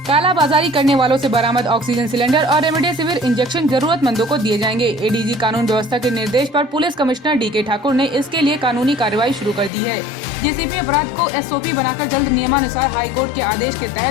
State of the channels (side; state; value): right; drops out; at 9.7 s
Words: कालाबाजारी करने वालों से बरामद ऑक्सीजन सिलेंडर और रेमडेसिविर इंजेक्शन जरूरतमंदों को दिए जाएंगे। एडीजी कानून व्यवस्था के निर्देश पर पुलिस कमिश्नर डीके ठाकुर ने इसके लिए कानूनी कार्रवाई शुरू कर दी है। जेसीपी अपराध को एसओपी बनाकर जल्द नियमानुसार हाईकोर्ट के आदेश के